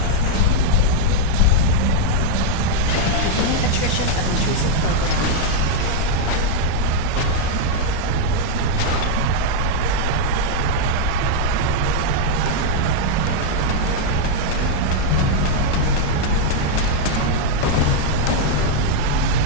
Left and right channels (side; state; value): both; different; correlation -0.01